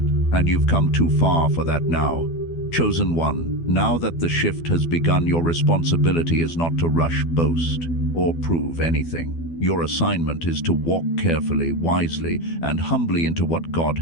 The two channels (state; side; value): late; right; 12 ms